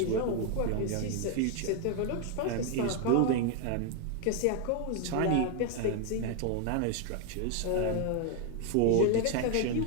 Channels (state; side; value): different; both; correlation 0.01